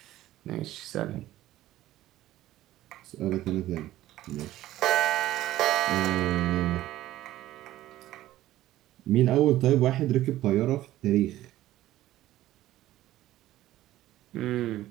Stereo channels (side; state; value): left; quieter; 14.8 dB